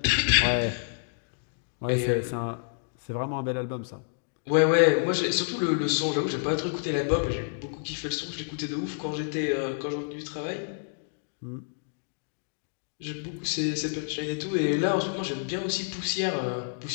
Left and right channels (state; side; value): silent; right; digital silence